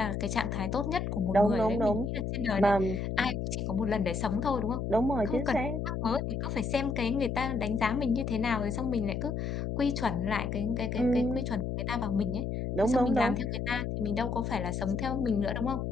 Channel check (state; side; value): noise; left; hum, 2 dB below the sound